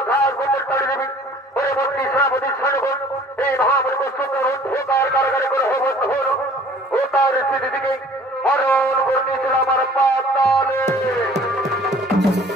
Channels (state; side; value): normal; both; correlation 0.51